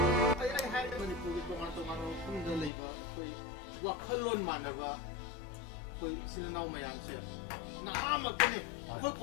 wakalon manaba koi sinau mayam se nama kene koi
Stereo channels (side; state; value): right; drops out; at 2.7 s